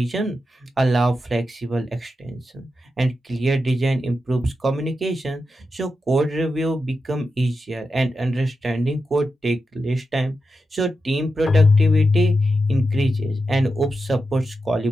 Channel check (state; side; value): normal; both; correlation 0.88